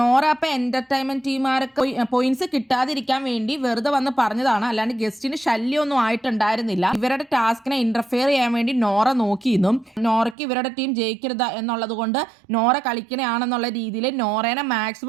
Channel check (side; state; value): left; drops out; at 10.4 s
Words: അപ്പൊ എന്റർടൈൻമെന്റ് ടീമുകാർക്ക് പോയിന്റ്സ് കിട്ടാതിരിക്കാൻ വേണ്ടി വെറുതെ വന്ന് പറഞ്ഞതാണ്, അല്ലാണ്ട് ഗസ്റ്റിന് ശല്യമൊന്നും ആയിട്ടുണ്ടായിരുന്നില്ല. ഇവരുടെ ടാസ്കിനെ ഇന്റർഫിയർ ചെയ്യാൻ വേണ്ടി നോറ നോക്കിയിരുന്നു. നോറയ്ക്ക് ഇവരുടെ ടീം ജയിക്കരുത് എന്നുള്ളത് കൊണ്ട് നോറ കളിക്കണയാണെന്നുള്ള രീതിയിൽ നോറേനെ